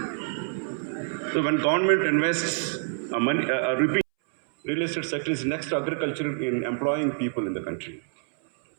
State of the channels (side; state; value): left; silent; 60 dB below the other